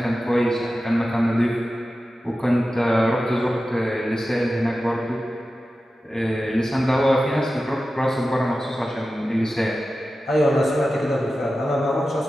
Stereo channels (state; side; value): normal; both; correlation 0.93